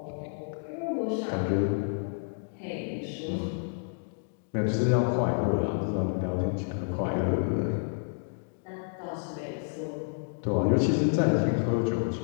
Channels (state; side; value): silent; right; digital silence